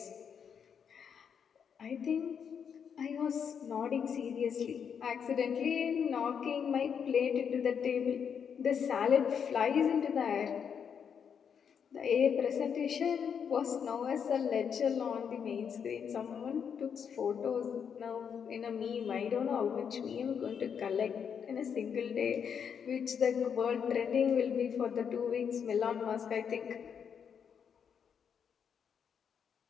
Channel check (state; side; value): quieter; right; 7.3 dB